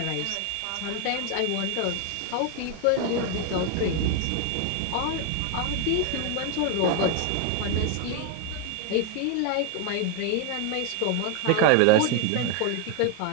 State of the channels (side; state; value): both; different; correlation 0.01